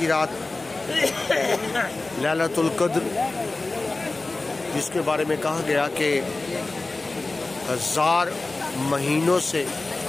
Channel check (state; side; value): quieter; right; 3.3 dB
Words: رات، لیلۃ القدر، جس کے بارے میں کہا گیا کہ 1000 مہینوں سے